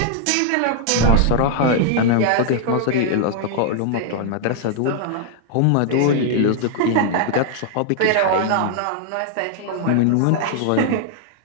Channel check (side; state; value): both; different; correlation 0.00